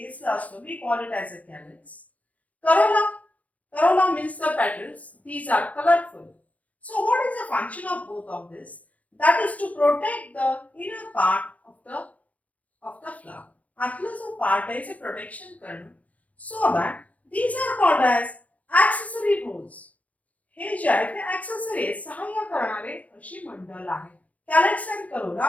असतो. We call it as a calyx. Corolla means the petals these are colourful. So what is the function of both of this. That is to protect the inner part of the flower. आतला जो part आहे ते protection करणं. So that these are called as accessory roles. हे जे आहे ते accessory सहाय्य करणारे अशी मंडल आहे. Calyx and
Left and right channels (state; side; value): late; right; 0.070 ms